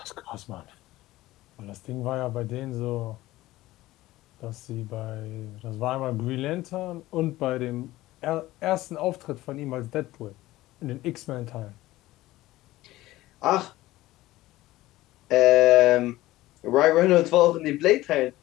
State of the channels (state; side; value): quieter; right; 17.1 dB